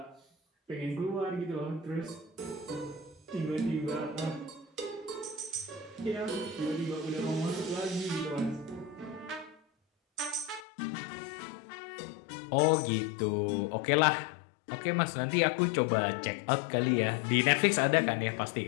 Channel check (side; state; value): right; drops out; at 10.7 s